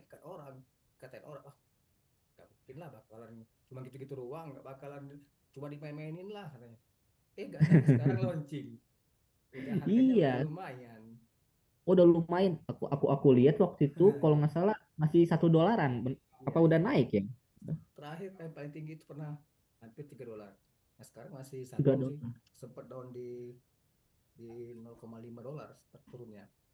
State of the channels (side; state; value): both; identical; correlation 1.00